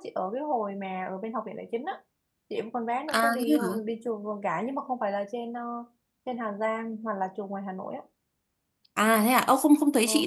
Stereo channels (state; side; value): identical; both; correlation 1.00